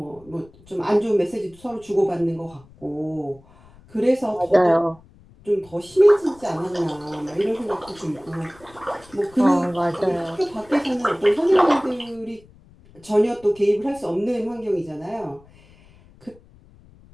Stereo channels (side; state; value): left; noise; rumble, 26 dB below the sound